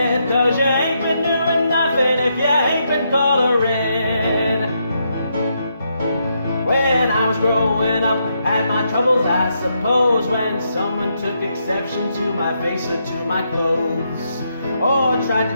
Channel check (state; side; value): inverted; both; correlation -0.79